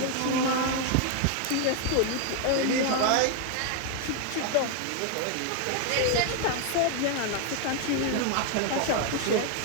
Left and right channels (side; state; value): both; different; correlation 0.01